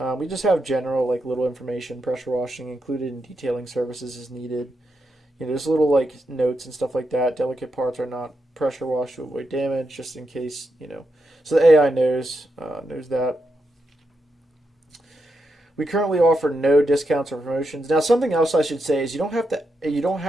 We just have general little information. Pressure washing included in detailing services is needed. There's little notes and stuff like that. Delicate parts are not pressure washed to avoid damage, just in case, So the AI knows that. We currently offer no discounts or promotions. Now, something else I should say is you don't have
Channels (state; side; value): normal; both; correlation 0.84